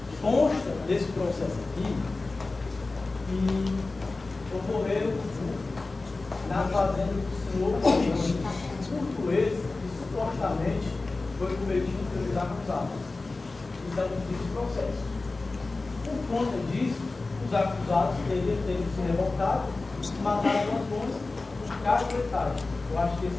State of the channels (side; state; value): right; quieter; 3.5 dB